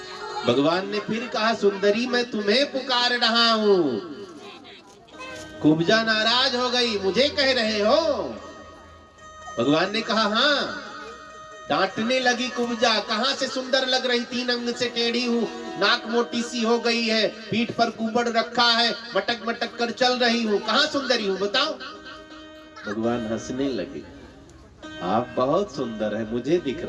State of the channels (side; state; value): both; identical; correlation 1.00